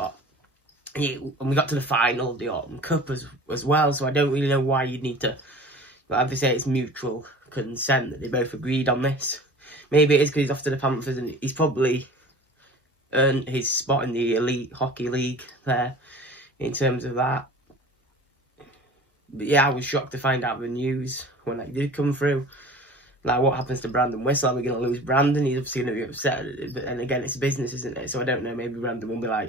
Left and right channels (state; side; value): normal; both; correlation 0.41